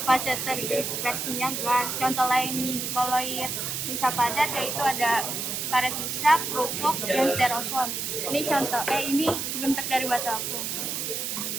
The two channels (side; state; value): right; noise; hiss, 3 dB below the sound